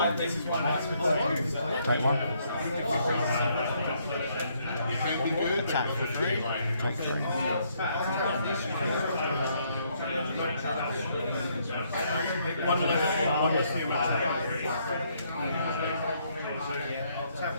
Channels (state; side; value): inverted; both; correlation -0.71